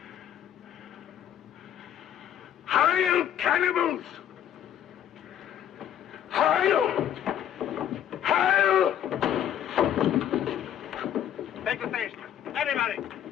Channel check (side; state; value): right; quieter; 10.4 dB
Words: Hail, cannibals! Hail! Hail! Take the station. Everybody.